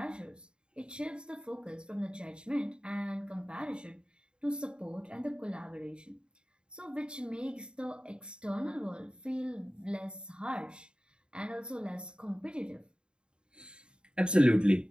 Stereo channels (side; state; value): left; late; 0.051 ms